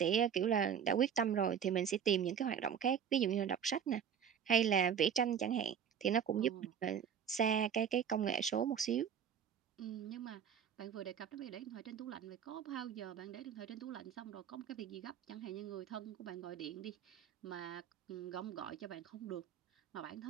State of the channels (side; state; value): left; quieter; 8.1 dB